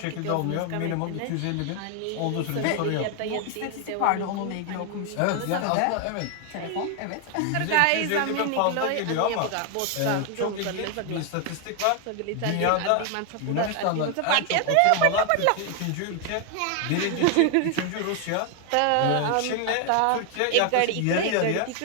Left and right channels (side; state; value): both; different; correlation 0.00